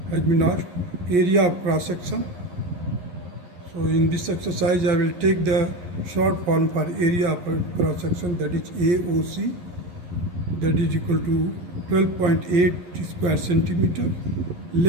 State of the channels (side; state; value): left; late; 11 ms